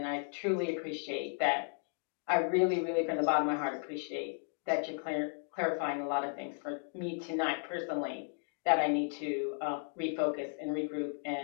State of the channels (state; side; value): silent; right; 55 dB below the other